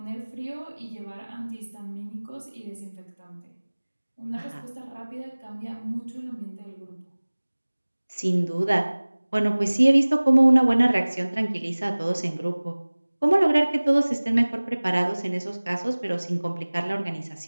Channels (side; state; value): both; inverted; correlation -1.00